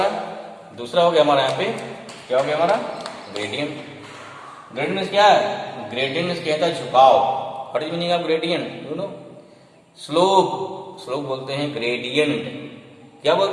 दूसरा हो गया हमारा यहाँ पे क्या हो गया हमारा? ग्रेडियंट। ग्रेडियंट क्या है? ग्रेडियंट कहता है झुकाव। What is meaning of gradient? You know, slope. Slope बोलते हैं ग्रेडियंट। क्या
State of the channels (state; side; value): identical; both; correlation 1.00